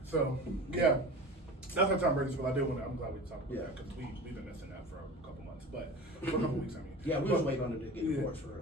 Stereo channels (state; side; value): normal; both; correlation 0.34